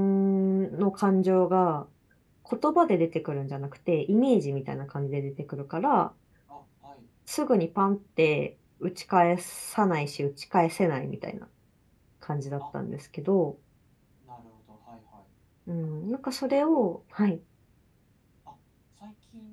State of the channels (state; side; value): identical; both; correlation 1.00